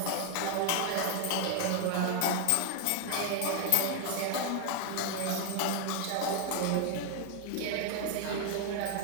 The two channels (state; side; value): different; both; correlation 0.00